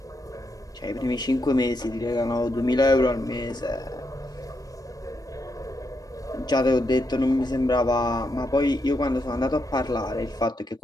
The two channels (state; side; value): normal; both; correlation 0.81